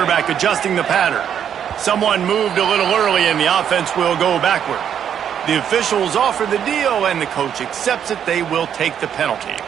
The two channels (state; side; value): quieter; left; 8.8 dB